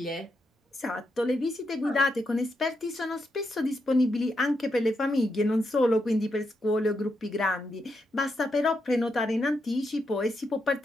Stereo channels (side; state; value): both; normal; correlation 0.83